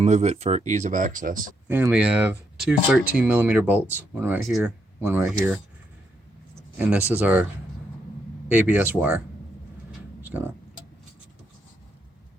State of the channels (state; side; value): normal; both; correlation 0.78